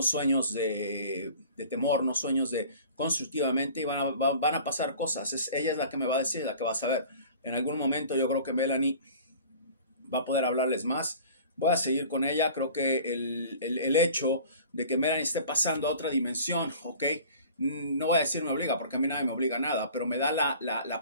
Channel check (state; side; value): inverted; both; correlation -0.45